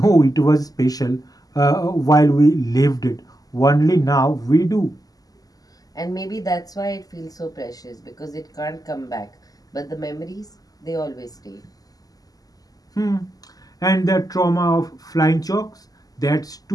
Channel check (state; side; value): late; right; 0.17 ms